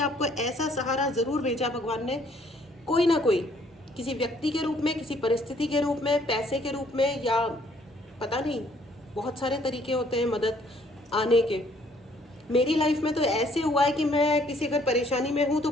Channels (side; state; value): both; normal; correlation 0.63